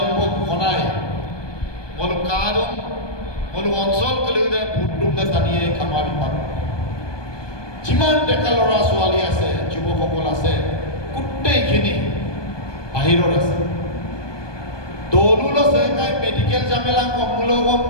ঘনাই মলু কাদম মলু অঞ্চল কলিদে ভোটটোতে টানিয়ে কামাবি পাব যিমান ডেকা ল'ৰা ছোৱালী আছে যুৱকসকল আছে গোটেইখিনি বাহিৰত আছে দৌলুল আছে কাই মেডিকেল জামেলা কমুলগ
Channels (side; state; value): right; late; 1.2 ms